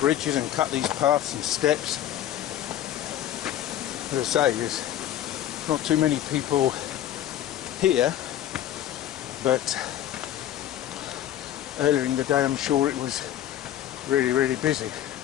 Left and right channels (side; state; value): right; quieter; 12.0 dB